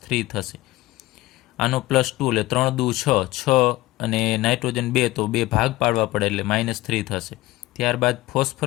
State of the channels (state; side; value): quieter; right; 18.0 dB